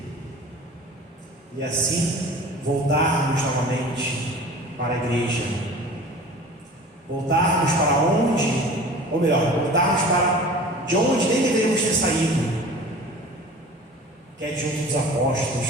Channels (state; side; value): normal; both; correlation 0.41